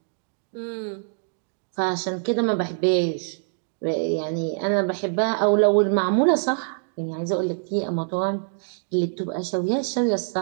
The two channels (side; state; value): left; silent; digital silence